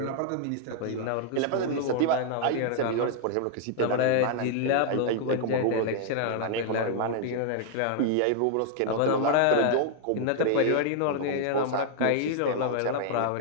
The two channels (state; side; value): different; both; correlation -0.01